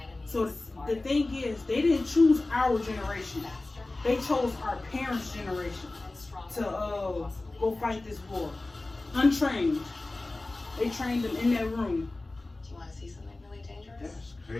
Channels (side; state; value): right; quieter; 3.0 dB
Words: So the thing is, they didn't choose our generation. They chose our parents' generation to go fight this war. Untrained. They trained them in that room. Do you want to see something really dangerous? That's